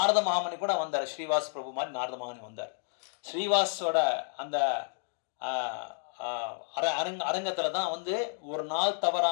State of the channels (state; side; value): silent; right; digital silence